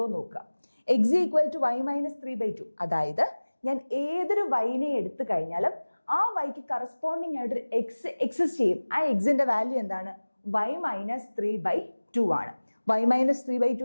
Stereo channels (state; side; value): inverted; both; correlation -1.00